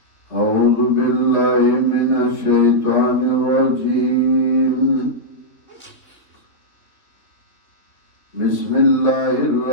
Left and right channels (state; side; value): late; right; 2.9 ms